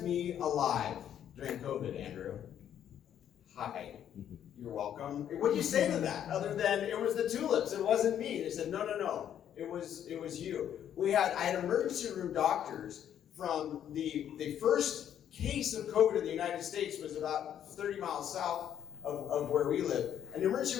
me alive during COVID, Andrew. Hi, you're welcome. What do you say to that? Other than it was the tulips, it wasn't me. They said, no, it was you. I had emergency room doctors from the first case of COVID in the United States was about 30 miles south of where we live. An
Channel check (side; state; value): right; quieter; 9.9 dB